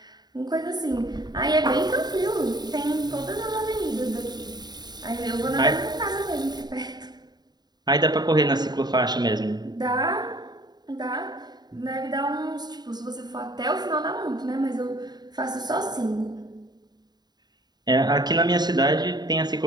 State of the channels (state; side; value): late; left; 0.20 ms